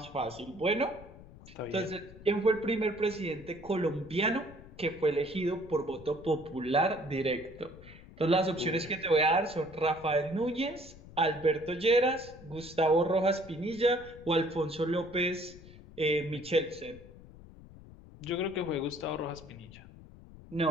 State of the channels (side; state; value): left; noise; rumble, 19 dB below the sound